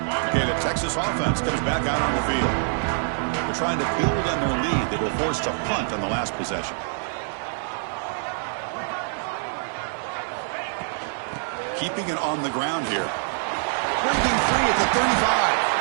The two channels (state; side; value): silent; left; digital silence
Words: Texas offense comes back out on the field. They're trying to build on their lead. They were forced to punt on the last possession. Keeping it on the ground here. Breaking free at the